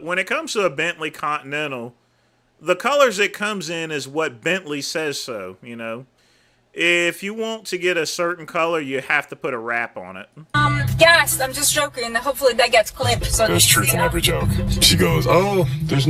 it comes to a Bentley Continental, the colors it comes in is what Bentley says so, you know. If you want to get a certain color, you have to put a wrap on it. Yes, I'm just joking. Hopefully that gets clipped. So There's truth in every joke. She goes, oh, there's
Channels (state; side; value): identical; both; correlation 1.00